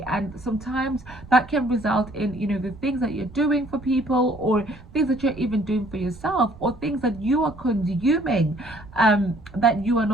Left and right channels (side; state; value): right; noise; rumble, 19 dB below the sound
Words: And sometimes that can result in, the things that you're doing for people, or things that you're even doing for yourself, or things that you are consuming that you are